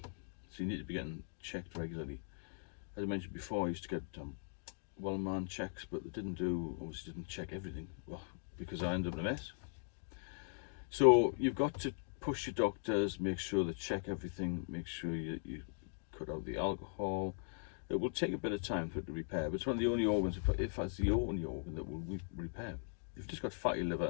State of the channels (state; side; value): silent; right; digital silence